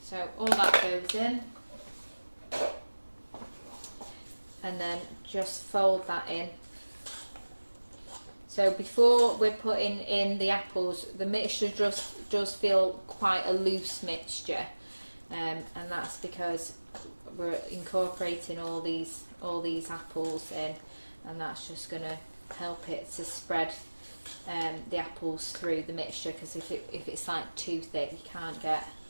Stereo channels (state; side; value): inverted; both; correlation -1.00